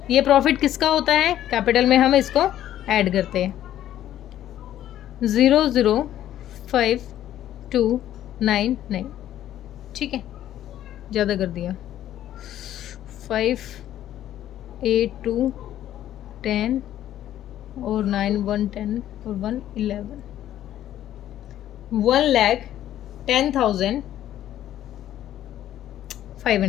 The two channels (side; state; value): right; quieter; 12.1 dB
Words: ये प्रॉफिट किसका होता है कैपिटल में, हम इसको ऐड करते हैं 0 0 5 2 9 9, ठीक है, ज़्यादा कर दिया 5 8 2 10 और 9 1 10 और 1 11,